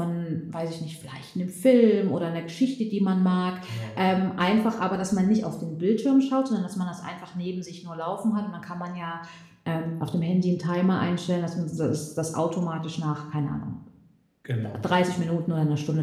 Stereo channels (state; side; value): identical; both; correlation 1.00